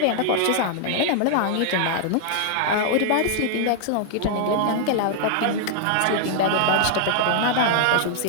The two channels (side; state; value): both; different; correlation -0.01